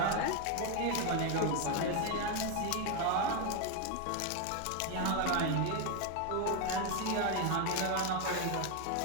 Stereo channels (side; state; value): both; different; correlation 0.01